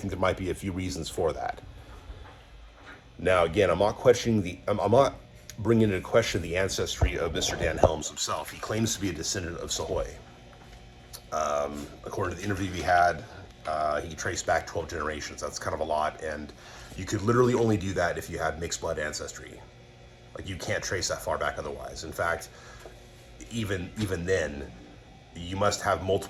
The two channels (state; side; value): identical; both; correlation 1.00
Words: there might be a few reasons for that. Now, again, I'm not bringing into question the ancestry of Mr. Dan Helms himself. He claims to be a descendant of Sahoy. According to the interview we had, he traced back 12 generations. That's kind of a lot, and you could literally only do that if you had mixed blood ancestry. Like, you can't trace that far back otherwise. In fact, even then, you must have